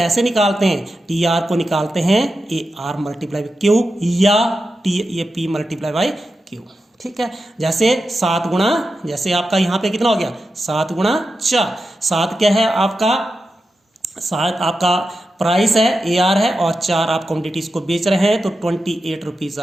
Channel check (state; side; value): normal; both; correlation 0.90